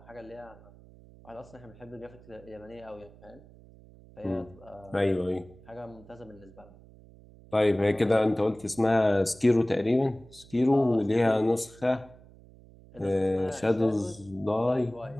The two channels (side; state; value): right; noise; hum, 23 dB below the sound